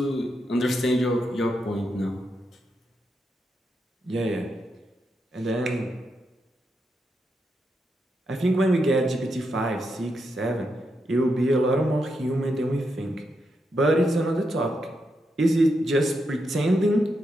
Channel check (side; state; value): both; normal; correlation 0.83